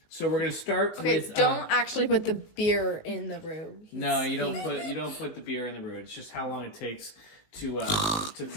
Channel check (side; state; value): right; late; 19 ms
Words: So we're going to start with. Don't actually put the beer in the roux. No, you don't put the beer in the roux. It's just how long it takes to